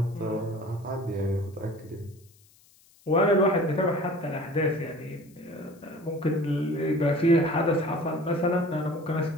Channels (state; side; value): noise; left; hiss, 29 dB below the sound